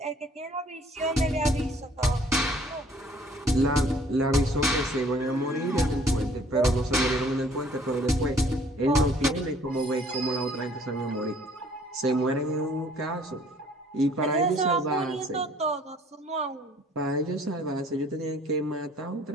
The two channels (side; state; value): both; normal; correlation 0.57